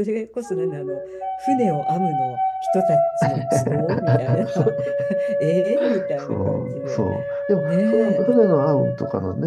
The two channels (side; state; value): both; identical; correlation 1.00